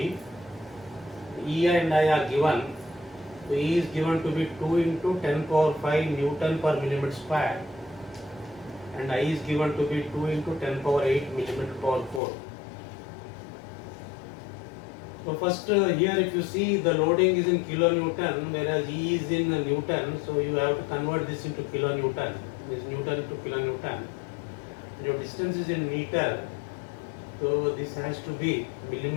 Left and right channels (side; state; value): right; drops out; at 12.2 s